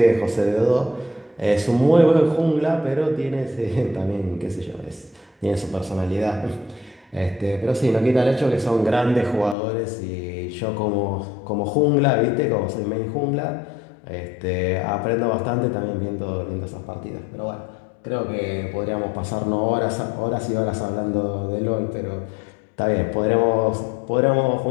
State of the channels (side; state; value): right; drops out; at 9.6 s